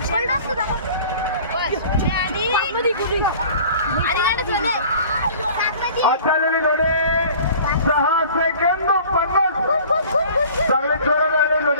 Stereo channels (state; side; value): inverted; both; correlation -0.46